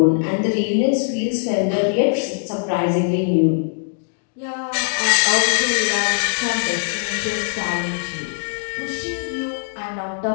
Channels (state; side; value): silent; right; digital silence